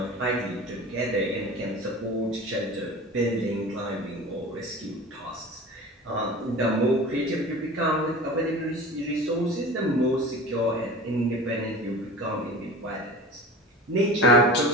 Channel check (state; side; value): normal; both; correlation 0.36